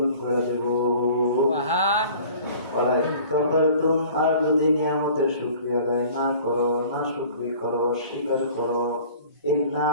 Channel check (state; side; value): inverted; both; correlation -0.47